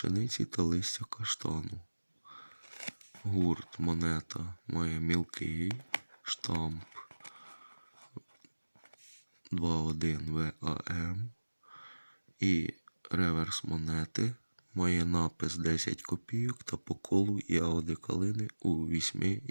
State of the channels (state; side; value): inverted; both; correlation -1.00